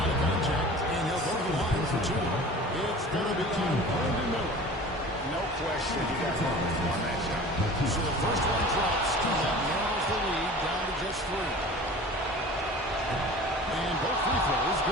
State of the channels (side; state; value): both; normal; correlation 0.41